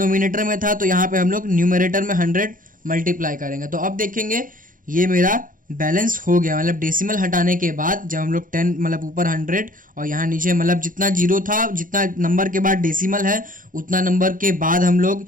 में था, तो यहाँ पे हम लोग न्यूमरेटर में 100 मल्टीप्लाई करेंगे। तो अब देखेंगे ये मेरा बैलेंस हो गया, मतलब डेसिमल हटाने के बाद जब हम लोग 10, मतलब ऊपर 100 और यहाँ नीचे, मतलब जितना 0 था, जितना नंबर के बाद डेसिमल है उतना नंबर के बाद हम लोग,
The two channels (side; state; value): left; late; 0.39 ms